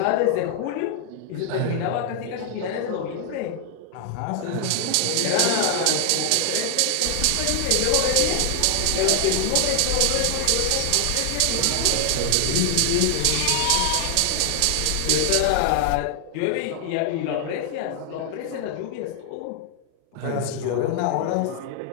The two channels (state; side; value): different; both; correlation 0.00